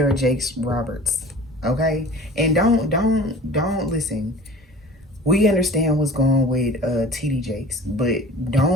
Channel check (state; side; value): normal; both; correlation 0.42